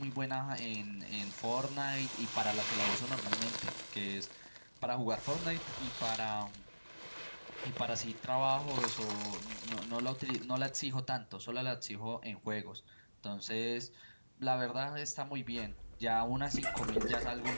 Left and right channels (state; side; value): inverted; both; correlation -1.00